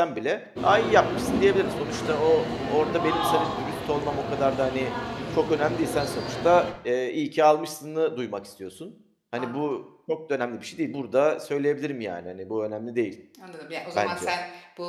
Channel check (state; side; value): identical; both; correlation 1.00